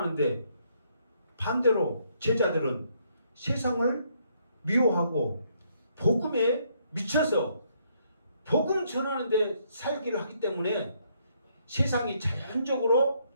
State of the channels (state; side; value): inverted; both; correlation -0.70